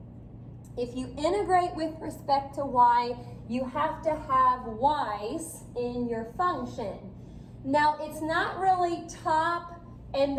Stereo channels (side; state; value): both; identical; correlation 1.00